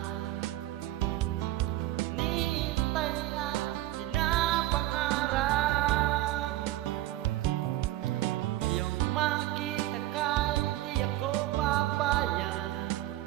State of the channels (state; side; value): quieter; left; 16.0 dB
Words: hinihintay at pinapangarap. Ngayong makita ka, hindi ako papayag.